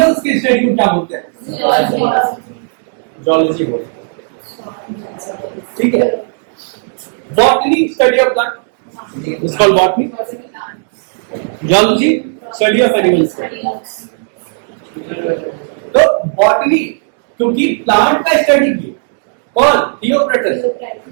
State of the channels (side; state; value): left; silent; digital silence